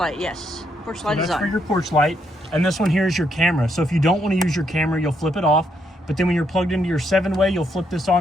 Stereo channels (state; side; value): normal; both; correlation 0.76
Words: yes. Porch light is on. That's for your porch light. And this one here is your camera. So if you don't want to use your camera, you'll flip it off. But then when you're plugged into your 7-way, you'll flip this